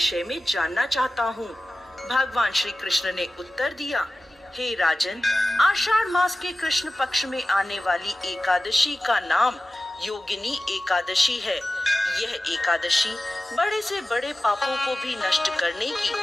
में जानना चाहता हूँ। भगवान श्री कृष्ण ने उत्तर दिया, हे राजन, आषाढ़ मास के कृष्ण पक्ष में आने वाली एकादशी का नाम योगिनी एकादशी है। यह एकादशी बड़े से बड़े पापों को भी नष्ट करने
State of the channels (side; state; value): both; normal; correlation 0.95